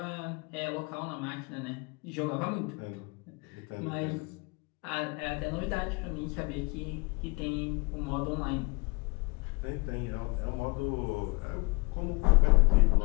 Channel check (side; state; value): right; quieter; 28.6 dB